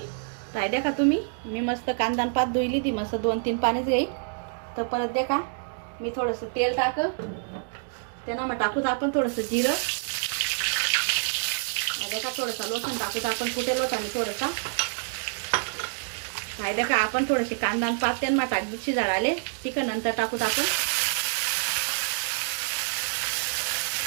तर देखा तुम्ही, मी मस्त कांदा आणि पात धुईली ती मस्त 2-3 पाण्याच येईल. तर परत देखा मी थोडंसं तेल त्यांना मग टाकूत आपण थोडंसं जिरं. देखा थोडंसं लसूण टाकूत आपण, कुठे लोटाने थोडंसा. काय देखा आपण थोडीशी कांदा आणि पात त्यांना टाकली शिजायला तिखट नंतर टाकूत आपण.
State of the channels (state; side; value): silent; left; digital silence